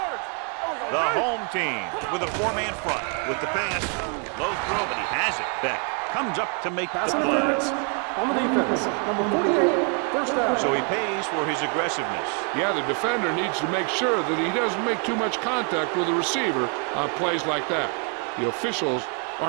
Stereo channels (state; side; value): quieter; left; 39.2 dB